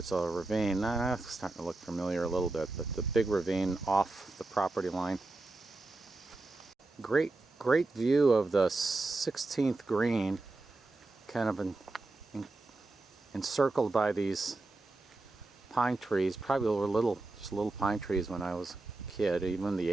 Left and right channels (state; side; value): quieter; left; 3.1 dB